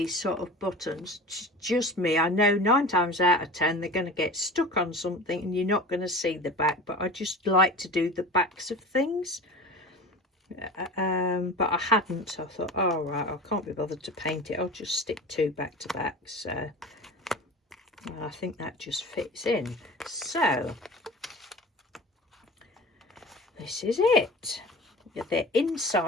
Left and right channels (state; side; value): normal; both; correlation 0.36